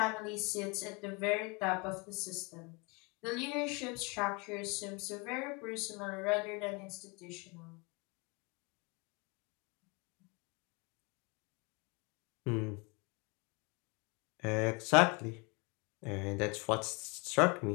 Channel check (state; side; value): quieter; right; 29.2 dB